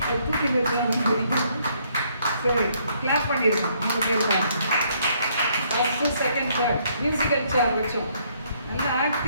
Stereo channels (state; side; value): inverted; both; correlation -0.68